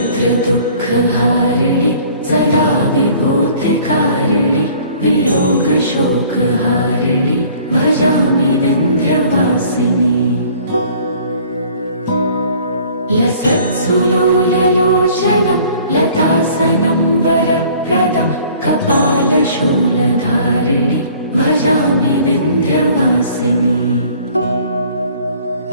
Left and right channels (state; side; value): inverted; both; correlation -0.53